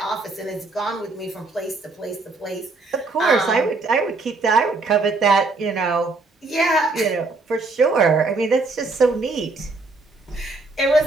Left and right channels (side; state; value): left; quieter; 3.5 dB